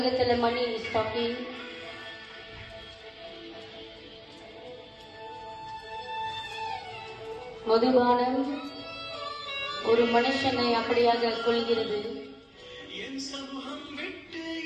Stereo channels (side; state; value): both; identical; correlation 1.00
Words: மணி இஸ் டாக்கிங். மதுபானம் ஒரு மனுஷனை அப்படியாக கொள்கிறது. என் சமூகம் விட்டு